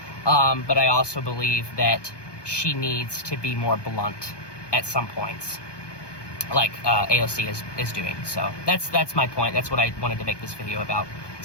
But I also believe that she needs to be more blunt at some points, like AOC is doing. So that's my point. That's what I wanted to make this video about.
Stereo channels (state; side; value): late; right; 1.2 ms